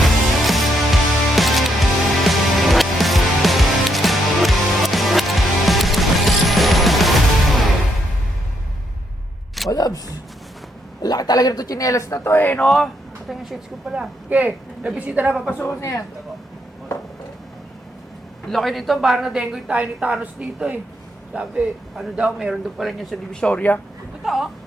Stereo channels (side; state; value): both; normal; correlation 0.76